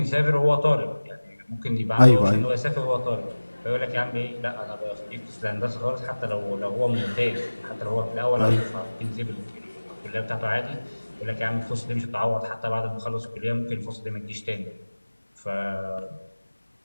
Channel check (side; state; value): both; inverted; correlation -1.00